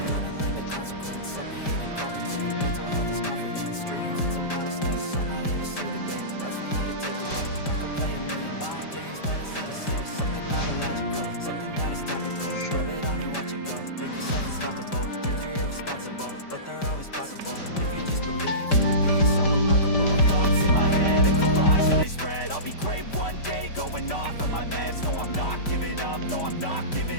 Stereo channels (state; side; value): late; right; 5.1 ms